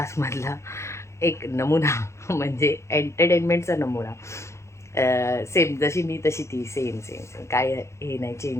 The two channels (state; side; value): late; right; 0.14 ms